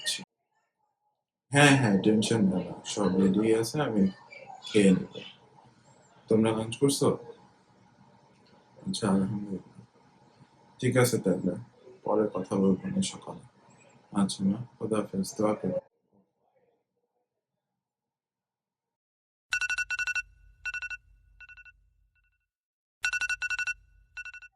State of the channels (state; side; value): identical; both; correlation 1.00